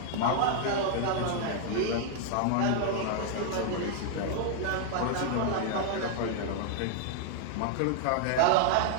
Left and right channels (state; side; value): different; both; correlation 0.00